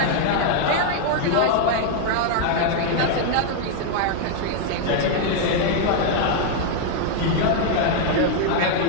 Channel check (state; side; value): different; both; correlation 0.00